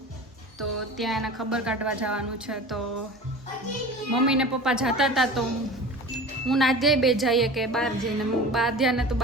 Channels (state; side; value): normal; both; correlation 0.37